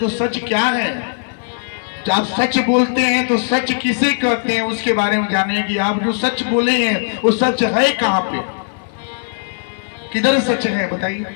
सच क्या है? जब आप सच बोलते हैं तो सच किसे कहते हैं, उसके बारे में जानिए कि आप जो सच बोले हैं वो सच है कहां पे, किधर सच है, बताइए।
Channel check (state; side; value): silent; right; 59 dB below the other